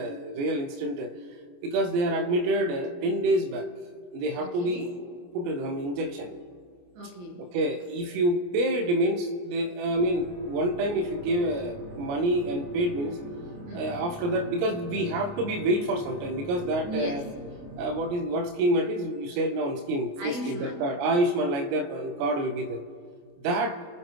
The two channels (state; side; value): late; left; 28 ms